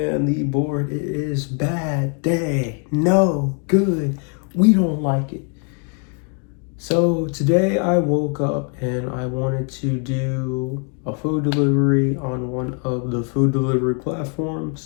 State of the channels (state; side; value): quieter; right; 39.0 dB